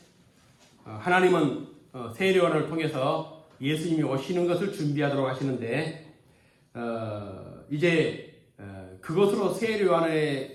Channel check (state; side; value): identical; both; correlation 1.00